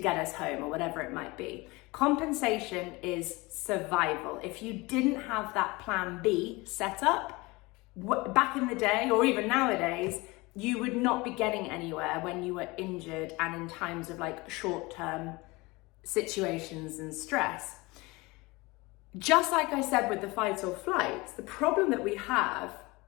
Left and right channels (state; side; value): quieter; right; 23.5 dB